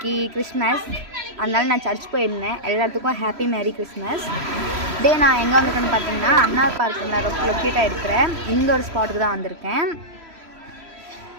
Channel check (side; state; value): left; late; 3.0 ms